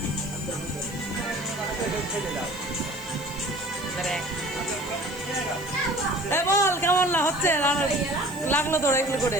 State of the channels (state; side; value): noise; right; hiss, 19 dB below the sound